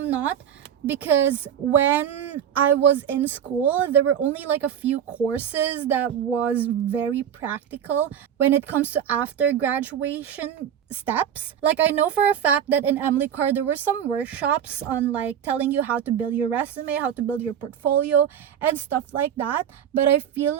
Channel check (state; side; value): quieter; left; 9.2 dB